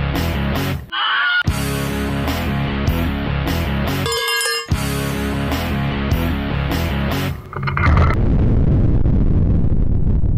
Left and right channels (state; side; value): identical; both; correlation 1.00